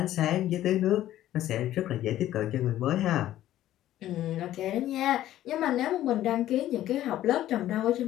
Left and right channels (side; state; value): right; quieter; 13.3 dB